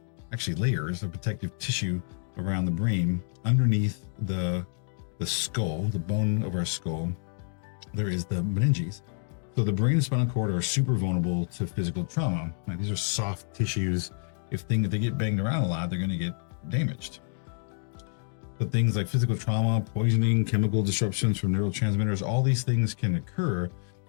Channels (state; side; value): silent; right; 59 dB below the other